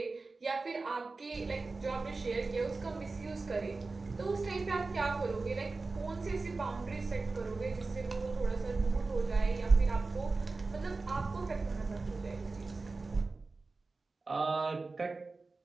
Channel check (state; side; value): quieter; left; 3.7 dB